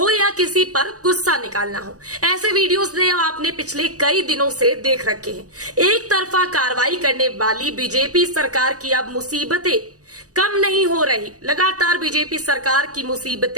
या किसी पर गुस्सा निकालना हो, ऐसे वीडियोस ने आपने पिछले कई दिनों से देख रखे हैं। एक तरफा कार्रवाई करने वाली बीजेपी सरकार की अब मुसीबतें कम नहीं हो रही, लगातार बीजेपी सरकार की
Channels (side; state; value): left; late; 0.66 ms